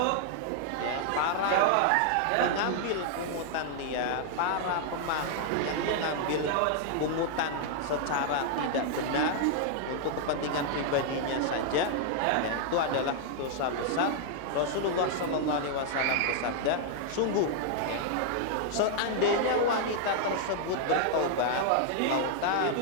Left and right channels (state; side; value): different; both; correlation 0.00